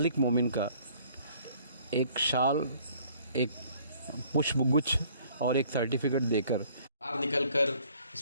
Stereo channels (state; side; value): inverted; both; correlation -0.58